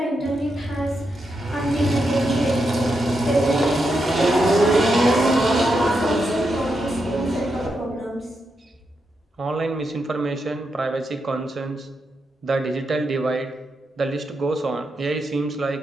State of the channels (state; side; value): normal; both; correlation 0.84